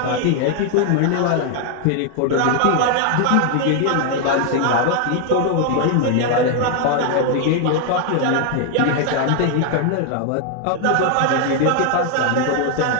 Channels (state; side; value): different; both; correlation 0.00